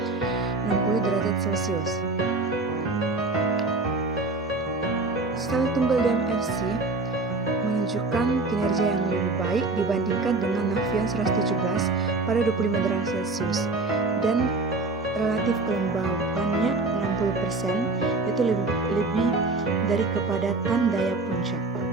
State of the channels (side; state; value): left; quieter; 3.4 dB